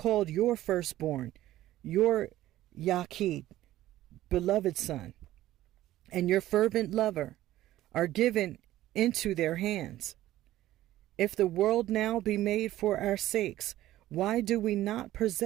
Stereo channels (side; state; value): left; quieter; 14.6 dB